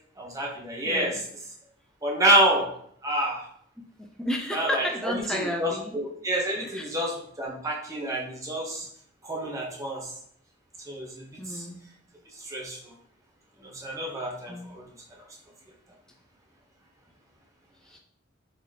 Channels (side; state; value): both; normal; correlation 0.10